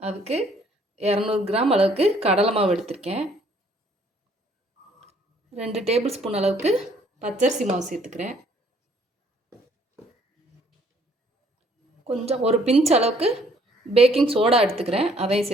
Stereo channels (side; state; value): both; normal; correlation 0.62